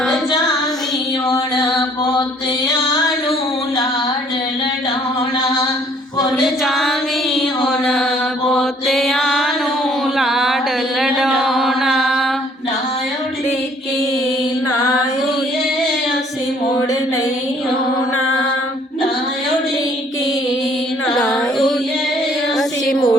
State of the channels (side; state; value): both; normal; correlation 0.60